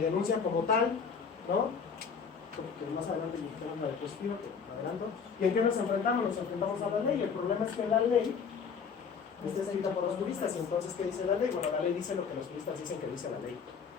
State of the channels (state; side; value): quieter; right; 6.1 dB